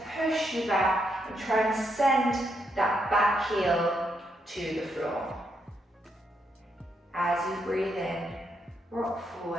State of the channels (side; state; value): both; normal; correlation 0.79